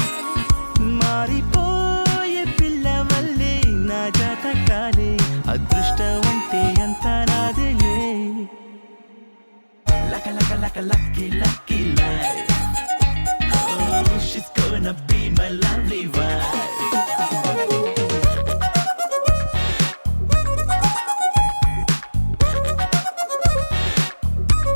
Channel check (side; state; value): both; inverted; correlation -1.00